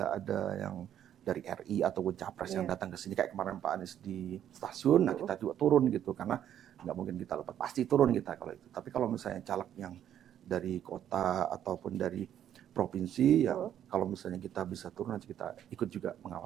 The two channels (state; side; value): quieter; left; 10.4 dB